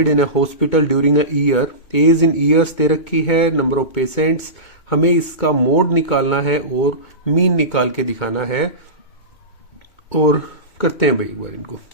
in a hospital during a year. Age in years दे रखी है, number of patients। हमें इसका मोड निकालना है और मीन निकाल के दिखाना है, और करते हैं भाई एक बार इनको।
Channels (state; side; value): late; right; 2.2 ms